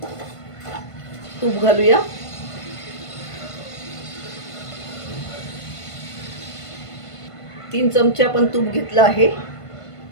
तूप घालूया। तीन चमचे आपण तूप घेतलं आहे।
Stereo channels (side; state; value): right; late; 1.5 ms